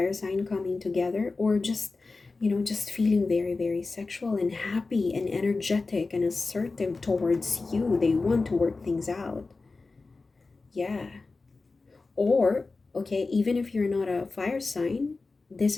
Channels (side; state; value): right; quieter; 3.8 dB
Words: sign coming together, or just, just feeling very, very sexual and happy and energetic and assertive towards you. They want to work things out. Yeah. Or, okay, even if you're not a fire sign, this